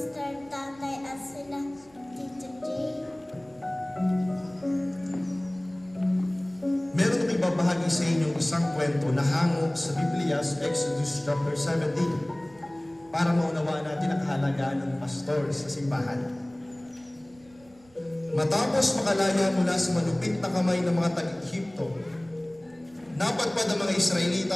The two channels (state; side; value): noise; right; rumble, 29 dB below the sound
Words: Tatay at sila Tito J. Meron kami babahagi sa inyong isang kwento na hango sa Biblia sa Exodus chapter 17 para maunawaan natin ang kahalagaan ng pastor sa simbahan. Matapos makalaya mula sa malupit na kamay ng mga taga-Ehipto, napadpad ang mga